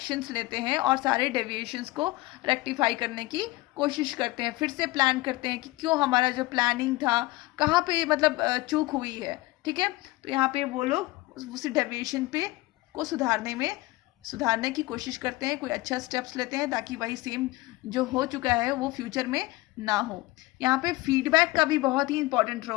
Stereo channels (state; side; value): quieter; right; 20.2 dB